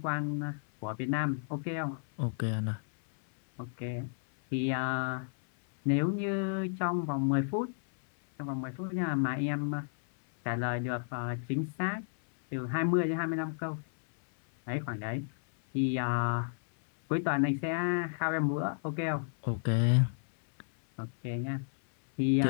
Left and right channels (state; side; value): silent; right; 56 dB below the other